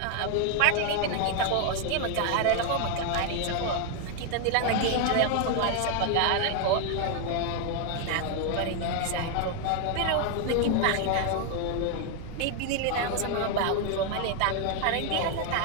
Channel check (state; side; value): different; both; correlation 0.00